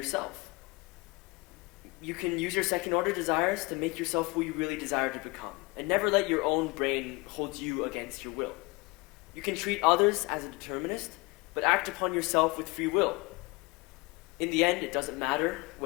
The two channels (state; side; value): quieter; right; 25.9 dB